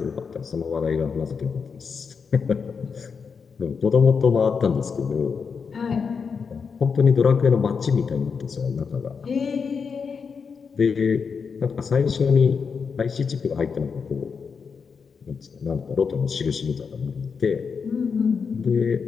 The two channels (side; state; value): right; quieter; 5.8 dB